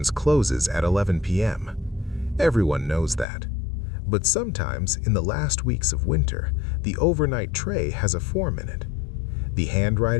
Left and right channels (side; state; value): right; drops out; at 3.2 s